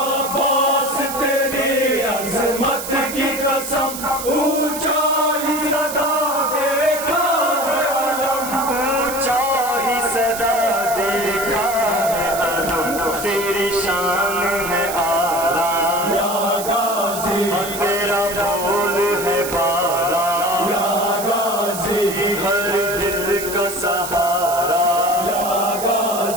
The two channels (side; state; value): right; noise; hiss, 8 dB below the sound